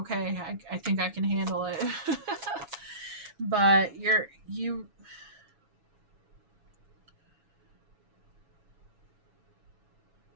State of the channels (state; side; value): late; left; 7.2 ms